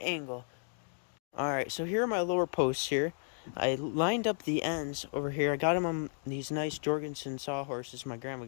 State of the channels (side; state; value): right; silent; digital silence